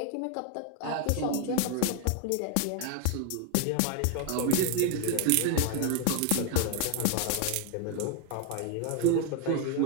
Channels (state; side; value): different; both; correlation 0.01